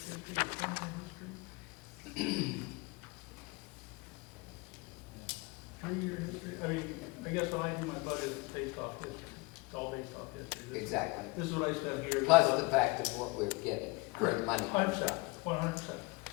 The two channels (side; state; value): right; quieter; 25.6 dB